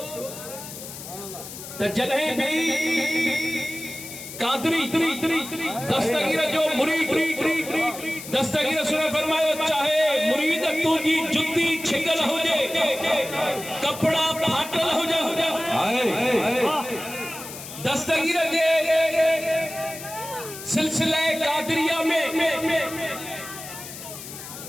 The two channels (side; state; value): left; noise; hiss, 12 dB below the sound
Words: त जॾहिं बि कादरी दस्तगीर जो मुरीद दस्तगीर सुने फरमायो चाहे मुरीद तुंहिंजी जुती छिगल हुजे कपड़ा फाटल हुजे दस्तगीर जे सिलसिले कादरिया में